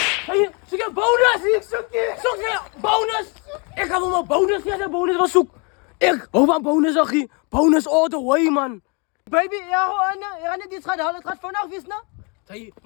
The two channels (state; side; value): quieter; right; 32.8 dB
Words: hey, zoek je bonus. Ik zoek je bonus. Ik ga wel mijn bonus, ja, de bonus wel zoek. Ik hou van bonus, zag je. Bonus all the way, man. Baby, ja, Anna, ja, net iets gaat halen. Het gaat vandaag weer snel. Zeg,